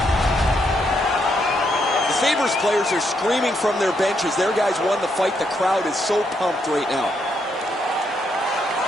The Sabres players are screaming from their benches. Their guys won the fight. The crowd is so pumped right now.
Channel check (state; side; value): normal; both; correlation 0.77